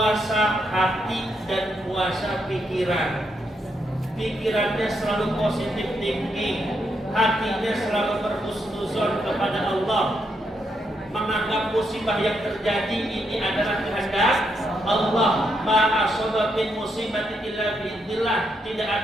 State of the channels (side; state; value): both; normal; correlation 0.79